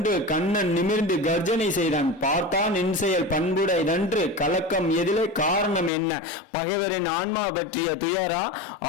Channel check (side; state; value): right; drops out; at 5.9 s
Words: கண்ணன் நிமிர்ந்து கர்ஜனை செய்தான். பார்த்தான் என் செயல் பண்புடையதன்று, கலக்கம் எதிலே, காரணம் என்ன? பகைவரின் ஆன்மா பற்றிய துயரா,